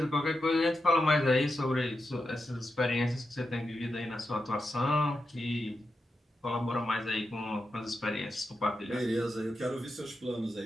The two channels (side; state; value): both; normal; correlation 0.88